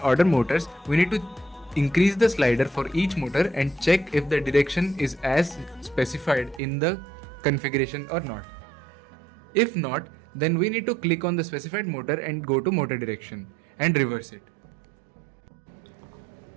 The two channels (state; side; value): drops out; left; at 6.6 s